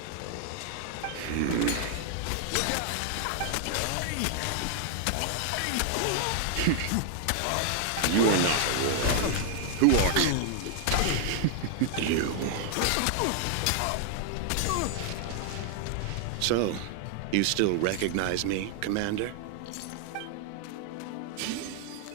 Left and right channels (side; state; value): both; different; correlation 0.00